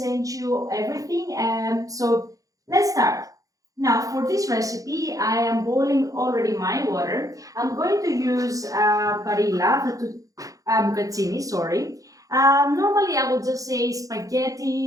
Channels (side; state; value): left; late; 0.17 ms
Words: you everything. So let's start. Now, for this recipe, I am boiling already my water. I'm going to use bucatini, sorry. Normally, I would just say